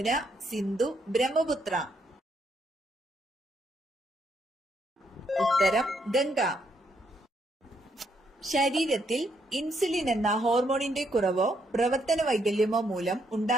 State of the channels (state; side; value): normal; both; correlation 0.74